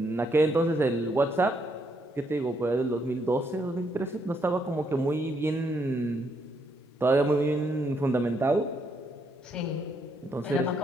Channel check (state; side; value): normal; both; correlation 0.75